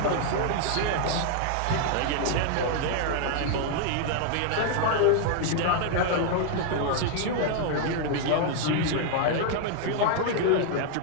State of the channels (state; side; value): different; both; correlation 0.00